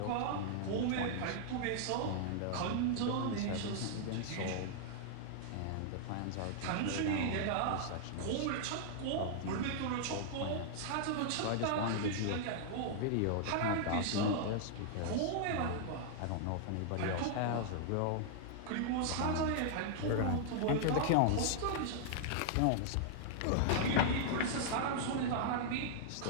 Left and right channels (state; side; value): different; both; correlation -0.01